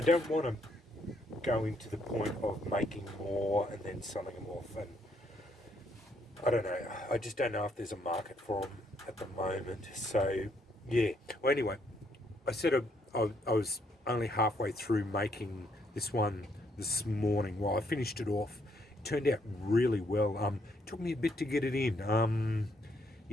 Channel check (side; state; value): both; normal; correlation 0.72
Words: don't want to go into the point of making more and then selling them off. And I don't know. I just don't know if there's a market for them at the moment. So yeah. Well, anyway, I said I was only halfway through making this one this morning. Well, I finished it off. It turned out really well. It took me a bit to get it in.